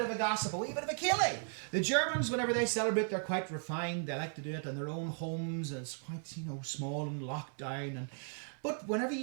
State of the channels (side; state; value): left; silent; 54 dB below the other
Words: of a gossip, a wee bit of a ceilidh. The Germans, whenever they celebrate, they're quite refined. They like to do it in their own homes, and it's quite, small and locked down. But whenever